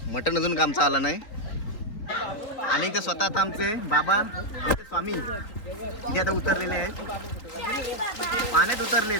मटण अजून आमचं आलं नाही. आणि ते स्वतः आता आमचे बाबा आमचे स्वामी इथे आता उतरलेले आहेत, पाण्यात उतरलेत.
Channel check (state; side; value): late; right; 3.7 ms